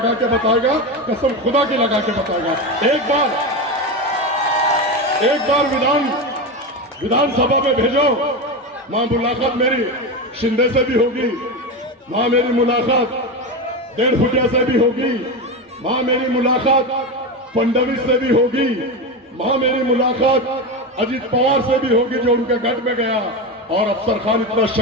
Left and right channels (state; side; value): normal; both; correlation 0.18